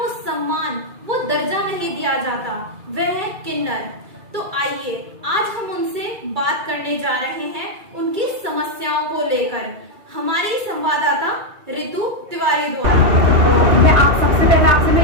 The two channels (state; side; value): late; left; 2.3 ms